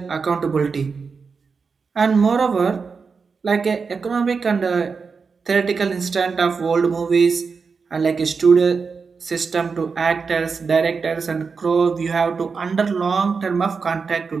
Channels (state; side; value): quieter; left; 5.1 dB